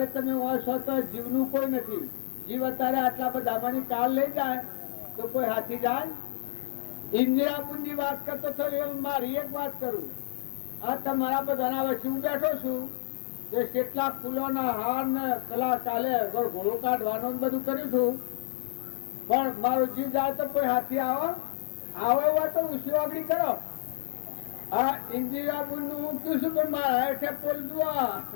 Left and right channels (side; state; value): right; silent; 58 dB below the other